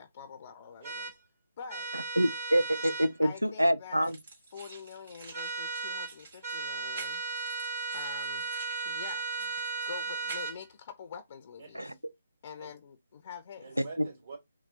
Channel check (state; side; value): inverted; both; correlation -0.81